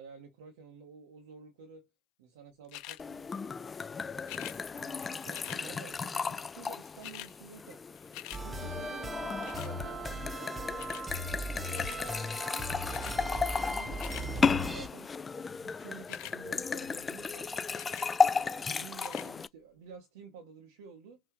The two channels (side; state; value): right; quieter; 3.9 dB